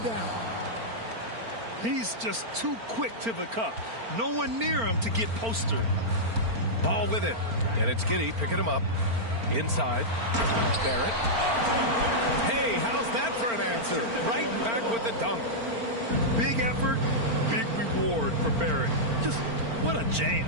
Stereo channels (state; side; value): late; left; 4.4 ms